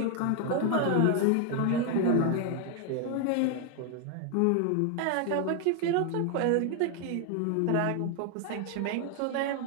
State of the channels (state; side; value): different; both; correlation 0.00